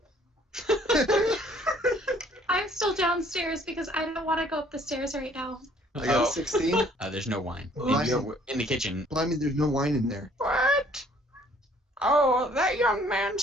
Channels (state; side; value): normal; both; correlation 0.59